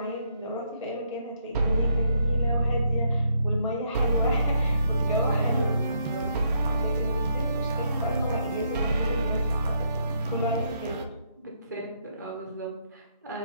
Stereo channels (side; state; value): both; inverted; correlation -0.74